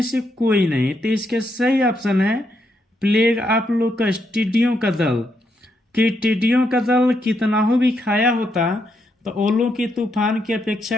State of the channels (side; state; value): both; normal; correlation 0.79